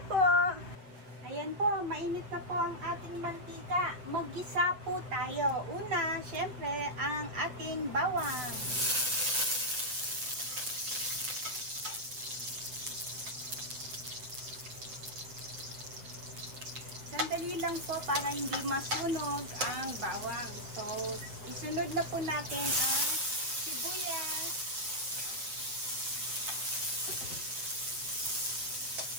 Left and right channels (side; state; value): left; late; 7.9 ms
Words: po. Ayan po, mainit na po ang ating mantika. Mag-gisa po tayo. Una, syempre, ang ating bawang. Sandali lang po para hindi masunog ang bawang. So, isunod na po natin ang sibuyas.